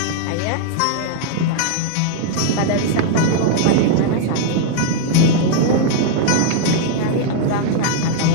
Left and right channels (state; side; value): different; both; correlation 0.00